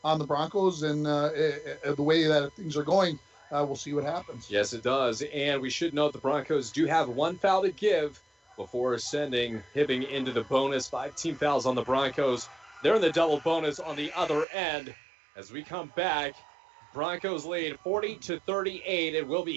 on the Broncos, and the way that things are going, we'll see what happens. Yes, it does. And we should note the Broncos do have 1 foul to give before sending Hibbing into the bonus. 5 team fouls on the Broncos. They're in the double bonus on the other end. As we come back, Broncos lead 40-38. It will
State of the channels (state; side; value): drops out; left; at 14.5 s